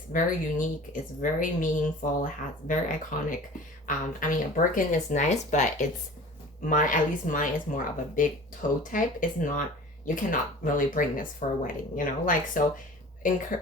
very unique, it's very meaningful, it has very iconic. A Birkin is nice, but at least mine is more of a big toe type. It's not, you cannot really bring this for a wedding, so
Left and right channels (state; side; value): normal; both; correlation 0.42